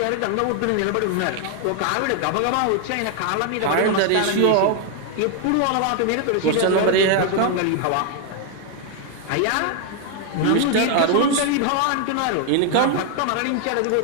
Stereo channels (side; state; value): both; different; correlation 0.00